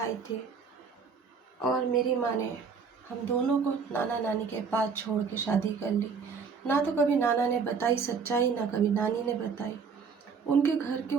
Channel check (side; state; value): left; quieter; 5.7 dB